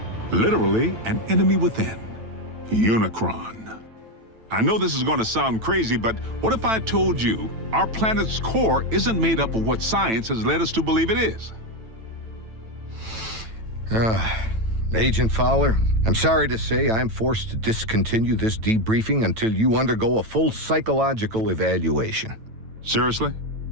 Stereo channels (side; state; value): left; late; 9.0 ms